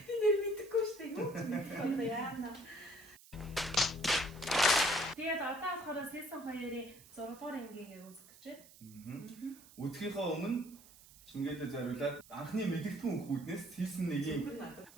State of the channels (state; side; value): noise; right; hiss, 22 dB below the sound